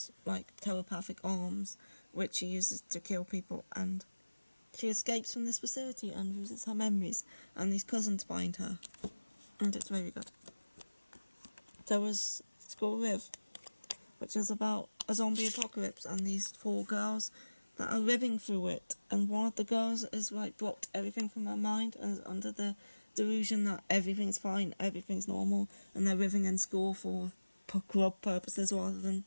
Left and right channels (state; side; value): inverted; both; correlation -1.00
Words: like telepathic arms, which she uses to kill people, and she escapes from this facility and loses her memories, and these cousins find her, and it's very good. There was School Live, which is about a zombie apocalypse and these 4 girls that are living through it, and one of the girls is like blocked everything from her mind and is under the delusion that everything's fine, everything's normal, and they're living in school for club purposes rather than